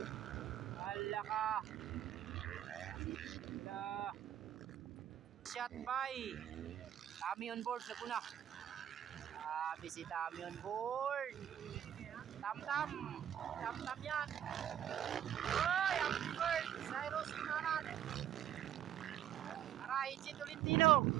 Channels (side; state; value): left; quieter; 10.6 dB